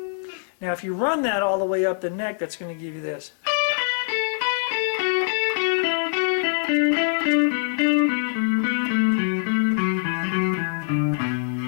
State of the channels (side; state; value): right; silent; digital silence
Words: Now if you run that all the way up the neck, that's going to give you this.